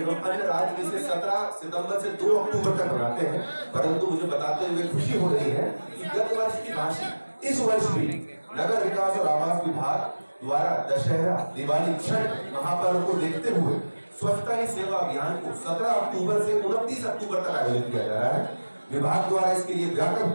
एवं अन्य राज्य इसे 17 सितंबर से 2 अक्टूबर तक मनाते हैं, परंतु मुझे बताते हुए खुशी हो रही है कि गत वर्ष की भांति इस वर्ष भी नगर विकास और आवास विभाग द्वारा दशहरा, दिवाली, छठ महापर्व को देखते हुए स्वच्छता ही सेवा अभियान को 17 अक्टूबर से 29 अक्टूबर तक आयोजित किया जा रहा है। विभाग द्वारा इसके लिए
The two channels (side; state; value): both; inverted; correlation -1.00